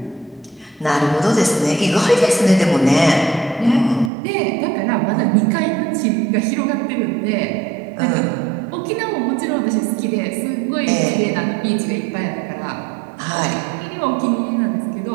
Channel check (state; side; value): drops out; left; at 4.1 s